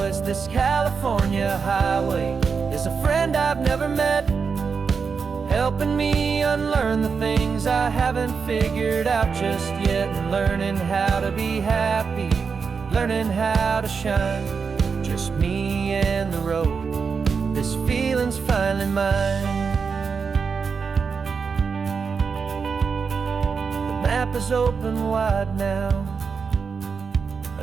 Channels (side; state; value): left; quieter; 5.6 dB